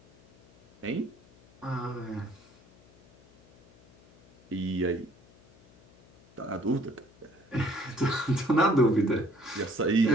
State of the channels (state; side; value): noise; left; hum, 28 dB below the sound